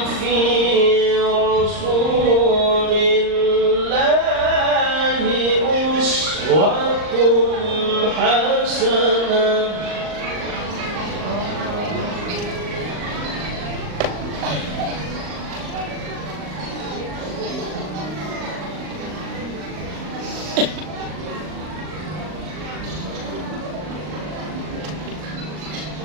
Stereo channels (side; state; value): left; late; 39 ms